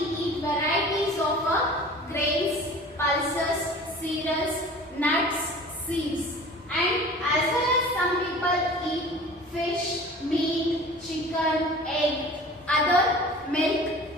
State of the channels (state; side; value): normal; both; correlation 0.42